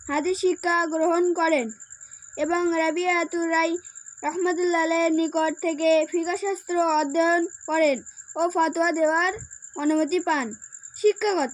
হাদিস শিক্ষা গ্রহণ করেন এবং রাবিয়াতুর রাই রহমতুল্লাহ আলাইহির নিকট থেকে ফিকহ শাস্ত্র অধ্যয়ন করেন ও ফতোয়া দেওয়ার অনুমতি পান।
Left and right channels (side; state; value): both; identical; correlation 1.00